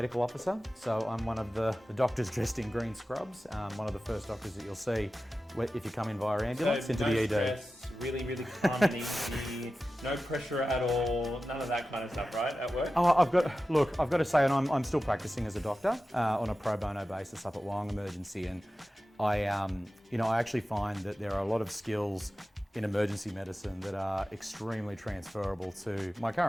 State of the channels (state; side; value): normal; both; correlation 0.94